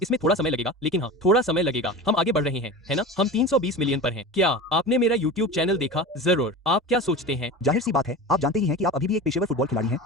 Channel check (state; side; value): normal; both; correlation 0.31